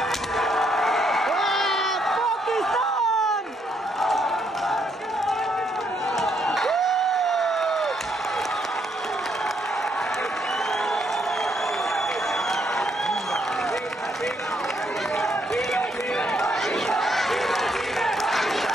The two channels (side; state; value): both; normal; correlation 0.73